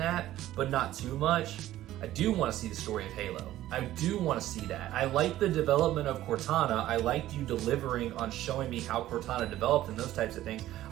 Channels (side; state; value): left; quieter; 14.2 dB